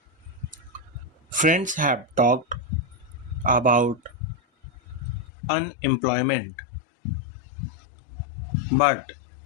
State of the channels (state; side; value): drops out; right; at 5.2 s